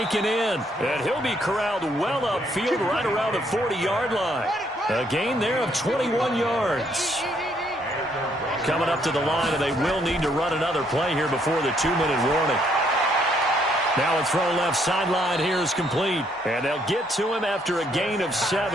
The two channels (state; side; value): normal; both; correlation 0.70